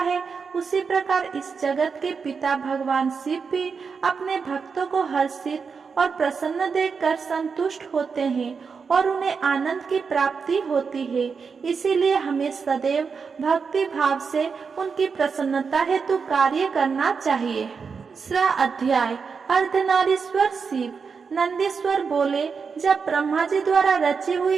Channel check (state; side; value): quieter; left; 5.5 dB